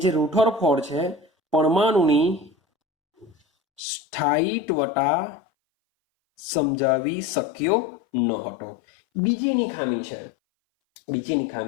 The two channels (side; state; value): right; drops out; at 3.8 s